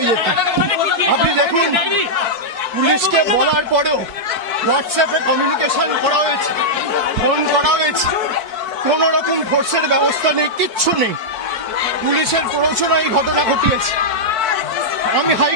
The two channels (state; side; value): late; left; 4.6 ms